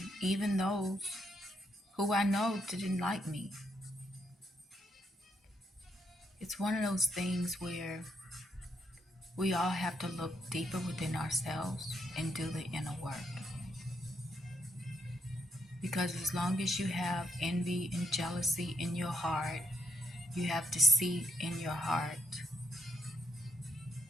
even those who I know didn't like me. It's one of those things where we all have to look deeper within ourselves and do the inner work. Because as long as you have envy and jealousy in your heart, you have deceit in your heart,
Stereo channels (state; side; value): normal; both; correlation 0.76